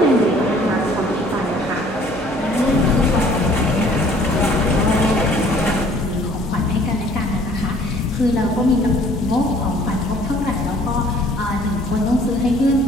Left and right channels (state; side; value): normal; both; correlation 0.56